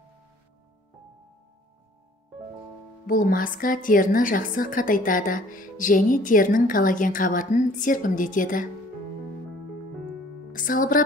Бұл маска теріні жақсы қатайтады және терінің коллаген қабатын серпімдетеді.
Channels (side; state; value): both; normal; correlation 0.55